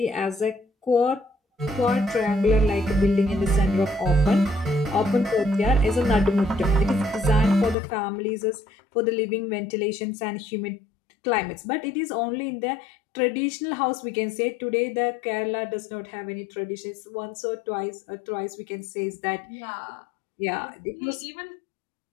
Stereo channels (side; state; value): right; drops out; at 7.8 s